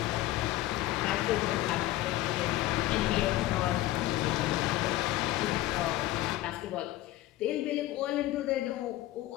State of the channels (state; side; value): quieter; right; 15.9 dB